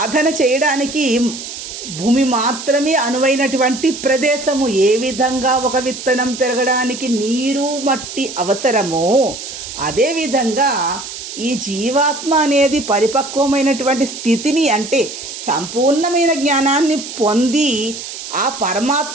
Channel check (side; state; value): right; noise; hiss, 10 dB below the sound